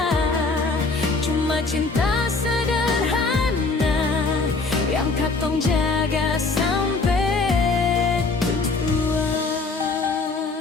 cuma cinta sederhana yang katong jaga sampai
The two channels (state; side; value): quieter; right; 3.8 dB